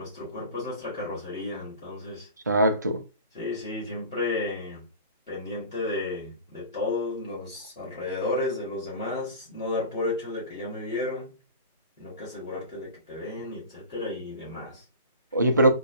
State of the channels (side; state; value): both; inverted; correlation -0.38